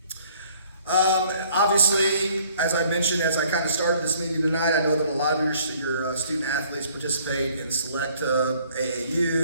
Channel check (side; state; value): both; inverted; correlation -0.59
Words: Obviously, as I mentioned, as I kind of started this meeting tonight, I know that a lot of your student athletes participate in select